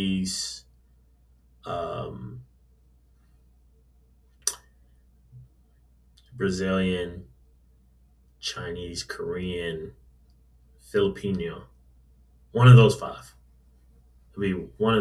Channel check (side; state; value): both; identical; correlation 1.00